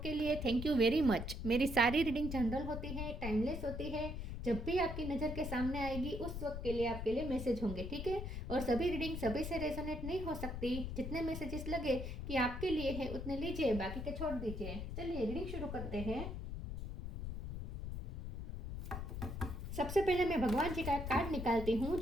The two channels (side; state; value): left; noise; rumble, 5 dB below the sound